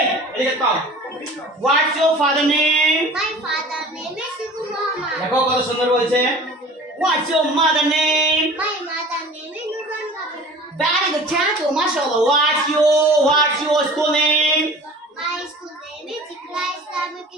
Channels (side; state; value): both; normal; correlation 0.43